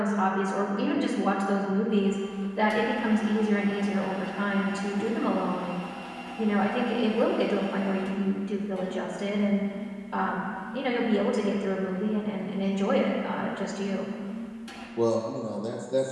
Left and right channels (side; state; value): both; identical; correlation 1.00